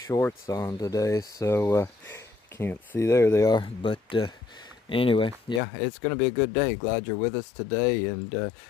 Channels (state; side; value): drops out; right; at 5.6 s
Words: on today, so can't see, there they are. But anyway, yeah, it's gonna be a good day. Glad you're with us today, and